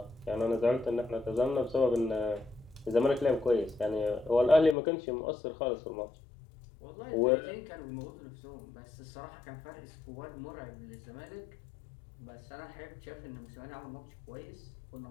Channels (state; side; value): drops out; right; at 4.8 s